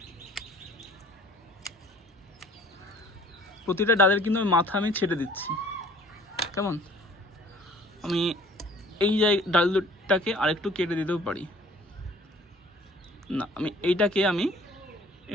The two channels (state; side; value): normal; both; correlation 0.52